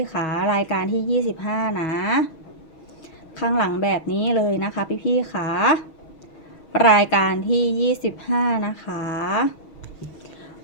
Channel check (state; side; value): late; right; 6.2 ms